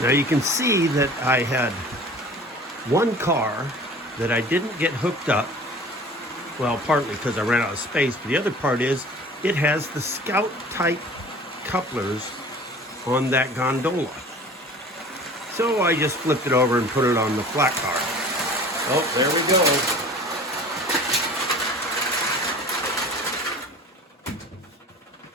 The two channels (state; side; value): normal; both; correlation 0.43